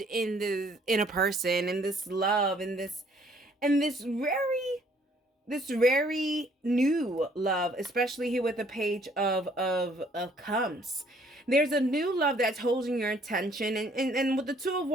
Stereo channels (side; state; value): both; normal; correlation 0.62